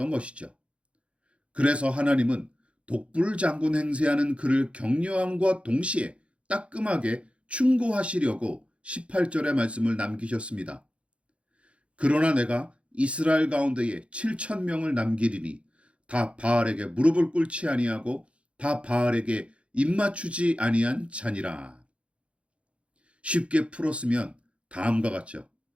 것이죠. 그래서 하나님은 독불장군 행세하는 그를 격려함과 동시에 따끔하게 충고하시려고 18절의 말씀을 남기셨습니다. 그러나 내가 이스라엘 가운데에 7,000명을 남기리니 다 바알에게 무릎을 꿇지 아니하고 다 바알에게 입맞추지 아니한 자니라. 쉽게 풀었으면 다음과 같죠.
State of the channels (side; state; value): left; late; 0.061 ms